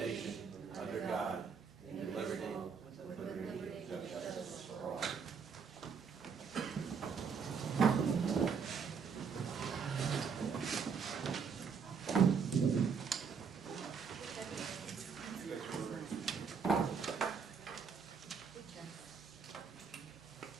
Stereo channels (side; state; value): left; quieter; 6.0 dB